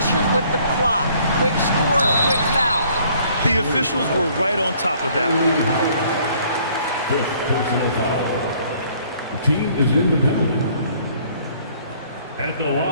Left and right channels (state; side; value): inverted; both; correlation -0.60